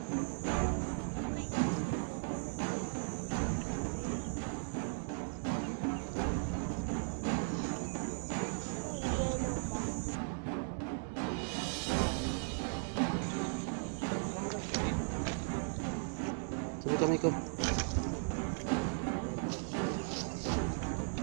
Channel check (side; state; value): left; silent; 53 dB below the other